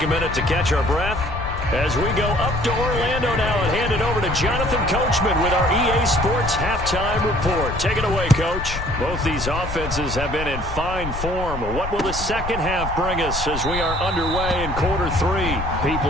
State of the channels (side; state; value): left; noise; rumble, 7 dB below the sound